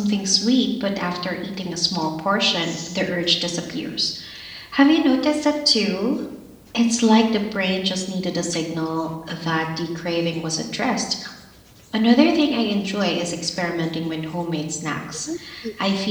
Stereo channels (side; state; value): both; identical; correlation 1.00